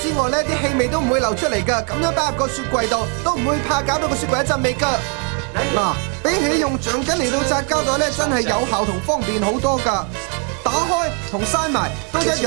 之外咧，啲氣味都唔會流出嚟㗎。咁樣擺入個雪櫃度，都唔會怕搞到個雪櫃一陣味㗎。嗱，比起用橡筋嚟到紮膠袋咧，真係有效同方便好多㗎。打開同閂埋都一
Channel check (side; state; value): left; quieter; 38.2 dB